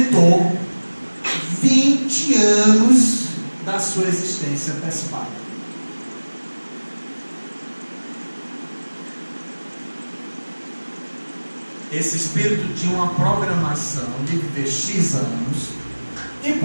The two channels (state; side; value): inverted; both; correlation -1.00